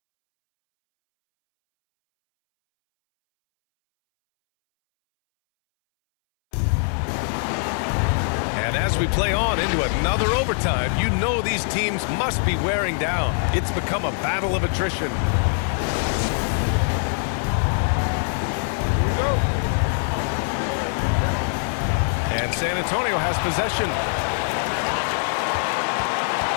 And as we play on into another overtime, you know these teams must be wearing down. It's become a battle of attrition. Here we go. And San Antonio has possession.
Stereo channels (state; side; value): silent; right; 63 dB below the other